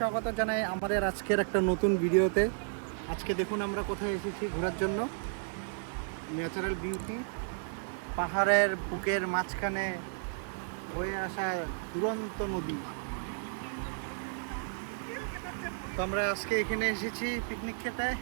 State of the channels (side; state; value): left; silent; digital silence